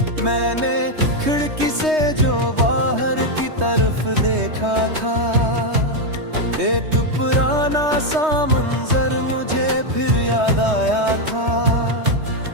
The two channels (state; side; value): late; left; 3.2 ms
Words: मैंने खिड़की से जो बाहर की तरफ देखा था, एक पुराना सा मंजर मुझे फिर याद आया था।